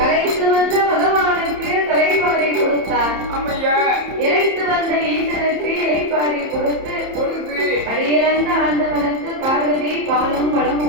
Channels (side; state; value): left; late; 30 ms